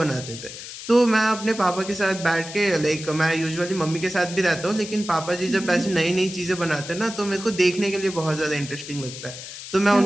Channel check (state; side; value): noise; left; hiss, 11 dB below the sound